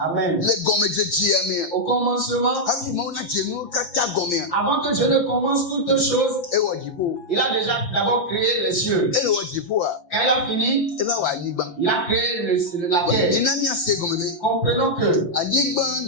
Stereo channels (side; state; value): right; late; 5.8 ms